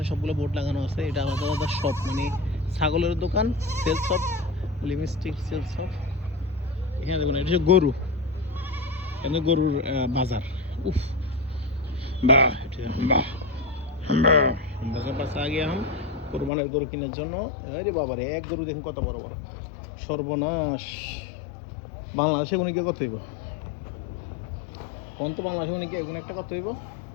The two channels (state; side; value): drops out; right; at 16.5 s